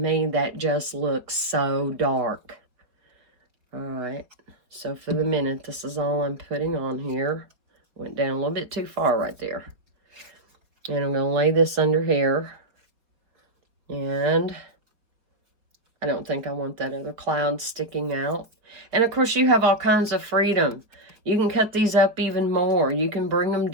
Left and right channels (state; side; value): late; left; 4.6 ms